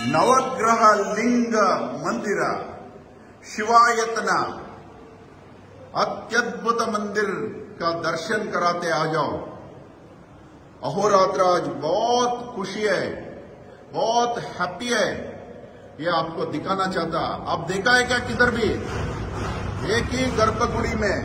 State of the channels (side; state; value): both; identical; correlation 1.00